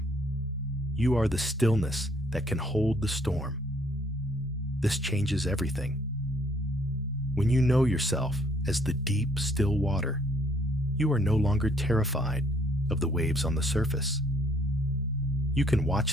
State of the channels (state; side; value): normal; both; correlation 0.64